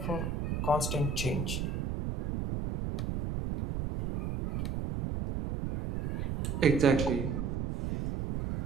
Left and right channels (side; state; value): right; noise; rumble, 2 dB below the sound